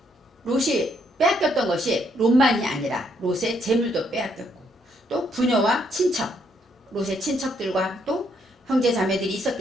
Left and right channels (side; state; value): both; normal; correlation 0.72